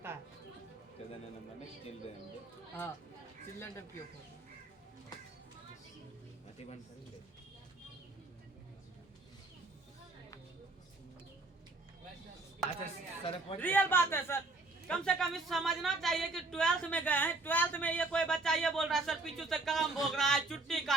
है। हाँ, चिल्ड्रन टाइप की अच्छा सर रियल बात है सर, कम से कम इस समझना चाहिए कि 12th में गए हैं, 12th में ये कोई बच्चा ये बोल रहा है सर पीछू से कलम भोग रहा है, चुट्टी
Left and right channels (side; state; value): left; quieter; 3.2 dB